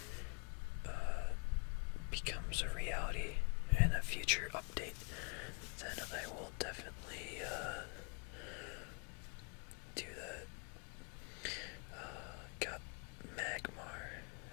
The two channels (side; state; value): right; quieter; 34.0 dB